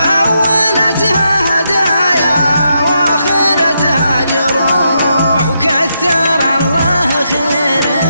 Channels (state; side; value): inverted; both; correlation -0.82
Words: هدايا وآخرتها جروح. وكثر الله